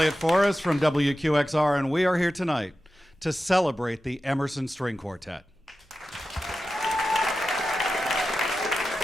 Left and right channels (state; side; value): normal; both; correlation 0.93